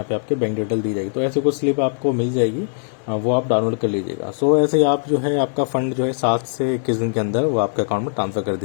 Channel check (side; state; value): right; silent; 65 dB below the other